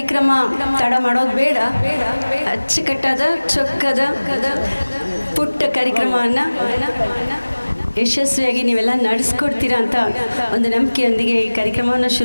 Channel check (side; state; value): both; inverted; correlation -1.00